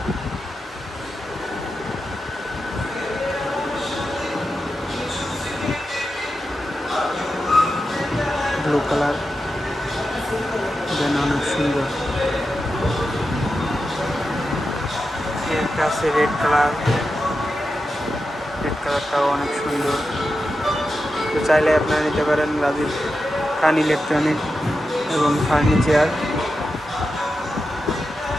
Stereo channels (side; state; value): both; normal; correlation 0.90